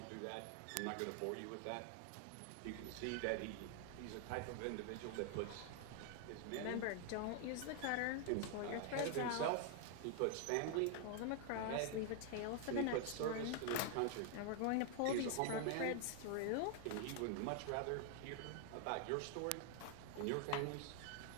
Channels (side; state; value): both; different; correlation 0.00